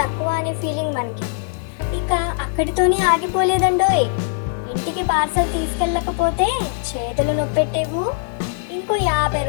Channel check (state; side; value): silent; right; 65 dB below the other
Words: అనే ఫీలింగ్ మనకి. ఇక అక్కడితోనే ఆగిపోలేదండోయ్. ఇంటికి పార్సల్ తీసుకెళ్ళకపోతే చేతులు నొప్పెట్టేవు. ఇంకో 50